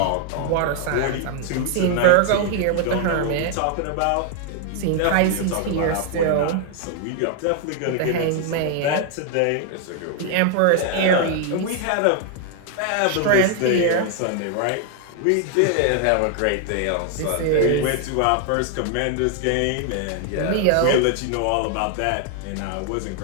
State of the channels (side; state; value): both; different; correlation 0.00